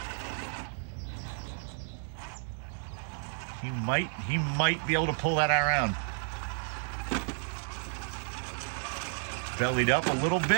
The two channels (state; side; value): silent; left; 57 dB below the other